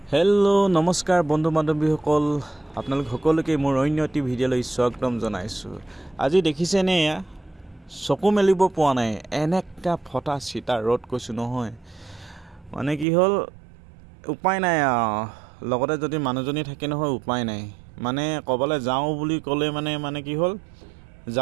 হেল্ল' নমস্কাৰ বন্ধু বান্ধৱীসকল, আপোনালোক সকলোকে মোৰ অন্য এটি ভিডিঅ'লৈ স্বাগতম জনাইছোঁ। আজি দেখিছেনে এয়া চকু মেলিব পোৱা নাই, এনেকা ফটা চিটা ৰ'দ কৈছোঁ নহয়। মানে কি হ'ল উপায় নাই লগতে যদি মানুহজনী থাকে নহয় উপায় নাই। মানে ক'বলৈ যাওঁ বুলি ক'লে মানে কি হ'ল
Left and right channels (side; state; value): left; drops out; at 13.1 s